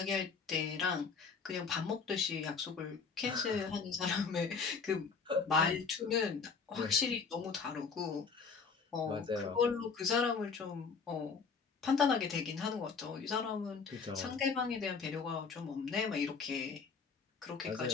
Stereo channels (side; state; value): right; quieter; 5.3 dB